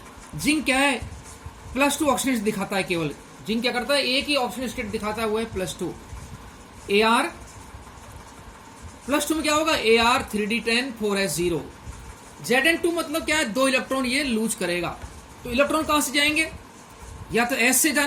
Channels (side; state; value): both; identical; correlation 1.00